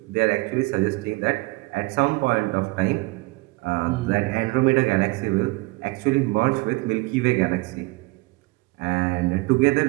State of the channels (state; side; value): quieter; left; 23.6 dB